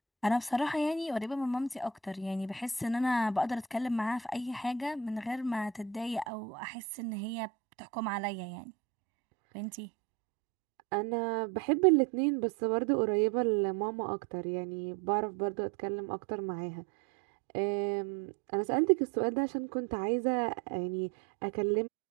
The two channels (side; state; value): left; drops out; at 6.2 s